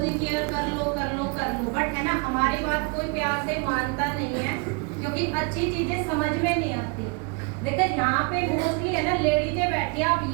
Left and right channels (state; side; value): quieter; left; 33.6 dB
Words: केयर कर लो कर लो कर लो, बट है ना हमारी बात कोई प्यार से मानता नहीं है, क्योंकि अच्छी चीजें समझ में नहीं आती। देखो यहाँ पे मोस्टली है ना लेडीजें बैठी, आप